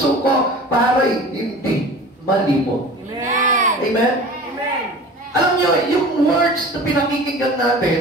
ko para hindi malimot. Amen. Amen? Amen. Alam niyo, yung words na pinakikinggan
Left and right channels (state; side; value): normal; both; correlation 0.39